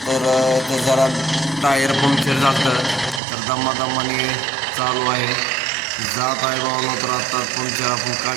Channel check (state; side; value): drops out; left; at 3.2 s